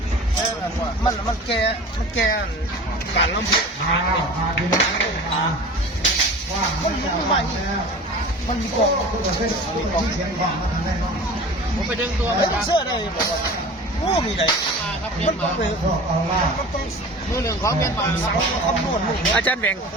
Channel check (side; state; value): both; normal; correlation 0.38